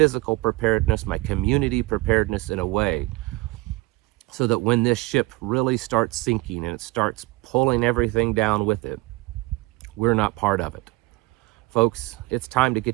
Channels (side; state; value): left; quieter; 21.6 dB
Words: preparedness, my community preparedness, in a way so that when this ship really starts sinking and it starts pulling everything down with it, we're not part of it. Folks, it's time to